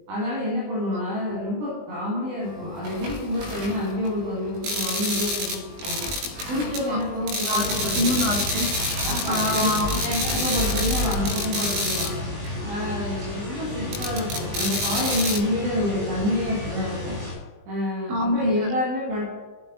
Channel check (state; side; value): late; left; 20 ms